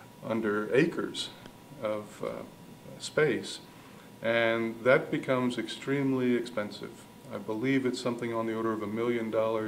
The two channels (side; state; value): both; identical; correlation 1.00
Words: under acres of space, and that becomes extremely expensive. I believe it's something on the order of $1 million